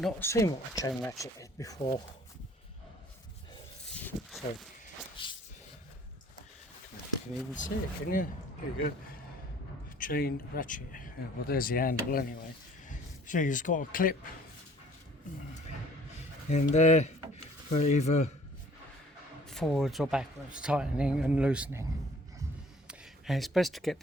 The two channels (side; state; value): both; normal; correlation 0.54